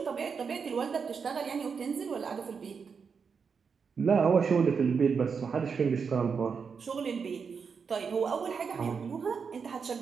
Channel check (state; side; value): quieter; left; 5.9 dB